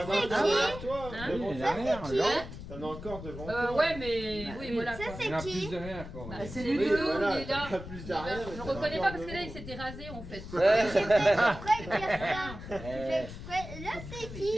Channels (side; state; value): left; noise; rumble, 11 dB below the sound